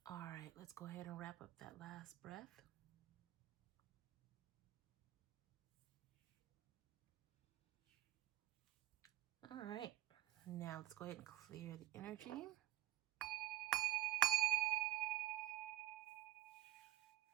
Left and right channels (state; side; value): quieter; left; 15.6 dB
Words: All right, let's go ahead and wrap up that last breath. All right, now let's go ahead and clear the energy.